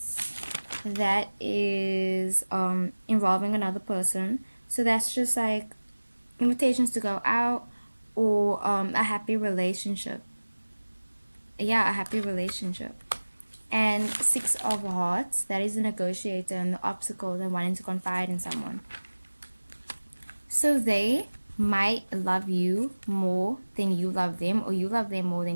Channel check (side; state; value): both; inverted; correlation -1.00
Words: That is involving another person. So that's just like invitations to go out, or a happy relationship. Yeah, a happy relationship. And Six of Hearts, that is the negotiator and the obstacle and wanting to confide in someone. So they might love you more than you love them, or you love them more